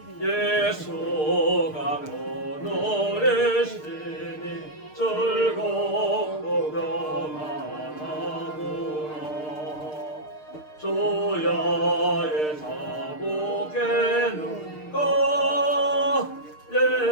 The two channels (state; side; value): late; right; 6.6 ms